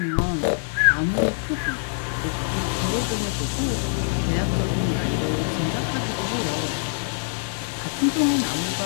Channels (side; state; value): right; silent; 62 dB below the other